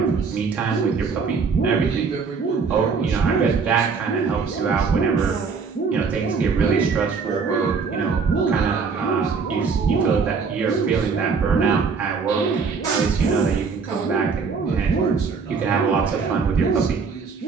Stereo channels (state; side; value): quieter; left; 5.2 dB